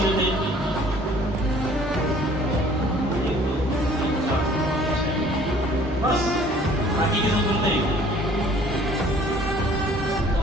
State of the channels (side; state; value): both; normal; correlation 0.54